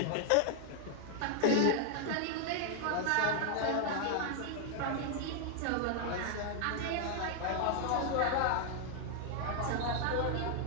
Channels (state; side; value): different; both; correlation 0.00